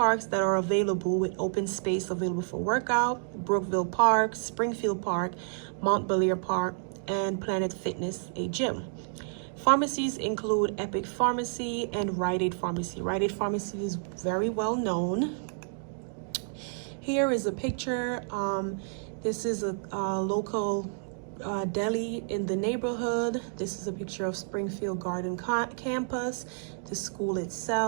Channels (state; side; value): silent; left; 58 dB below the other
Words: that are available with open space available for workout: Brookville Park, Springfield Park, Mount Belair Park, and Planet Fitness, a gym. Pharmacies include Epic Pharmacy and Rite Aid Pharmacy. Rite Aid Pharmacy is very well known. Here is a picture. This is a local deli in the neighborhood. This is a picture of Springfield Garden campus, the school